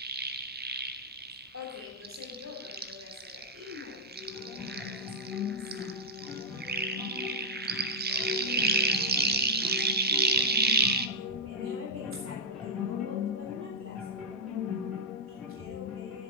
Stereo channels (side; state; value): both; normal; correlation -0.05